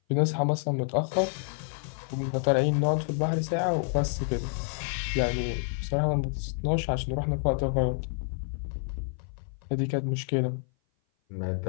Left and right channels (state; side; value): silent; right; 56 dB below the other